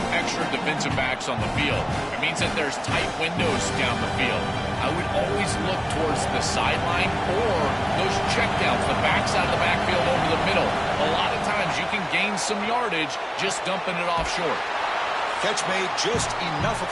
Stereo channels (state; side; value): identical; both; correlation 1.00